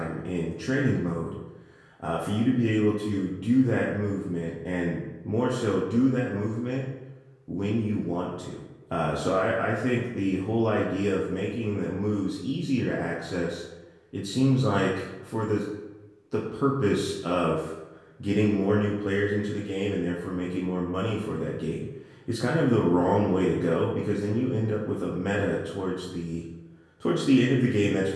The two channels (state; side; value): identical; both; correlation 1.00